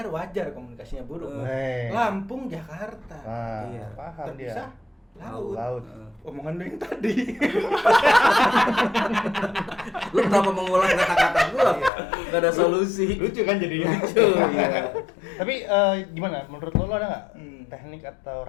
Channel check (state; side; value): drops out; right; at 11.9 s